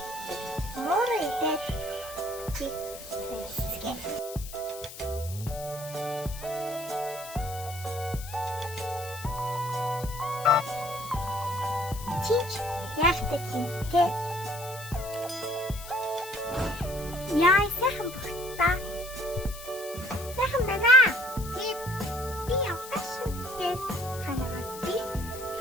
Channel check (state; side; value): noise; left; hiss, 13 dB below the sound